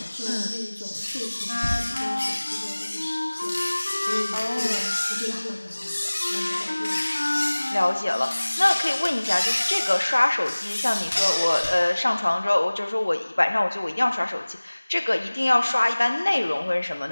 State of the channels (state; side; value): inverted; both; correlation -1.00